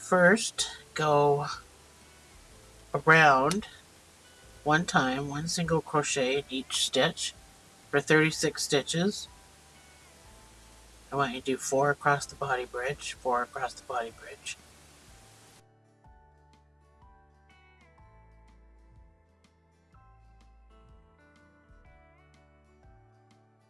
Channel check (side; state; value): both; identical; correlation 1.00